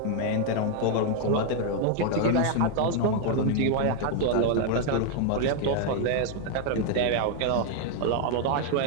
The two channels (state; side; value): different; both; correlation 0.00